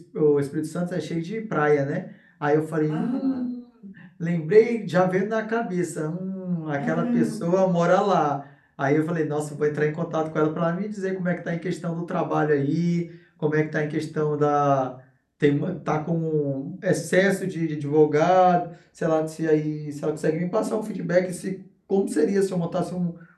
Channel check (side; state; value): both; identical; correlation 1.00